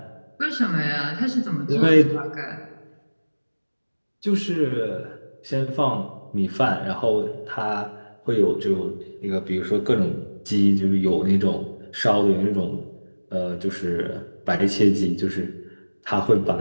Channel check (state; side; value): inverted; both; correlation -1.00